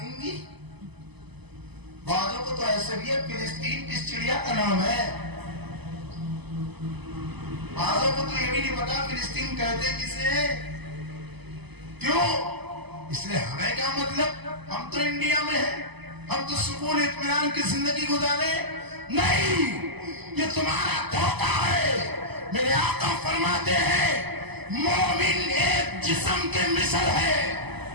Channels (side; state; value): left; late; 0.99 ms